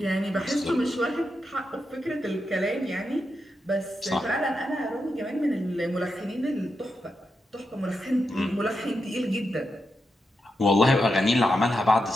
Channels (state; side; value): normal; both; correlation 0.86